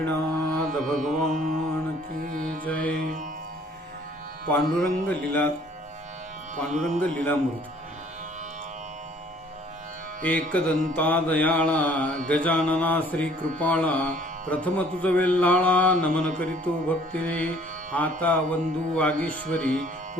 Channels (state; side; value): normal; both; correlation 0.57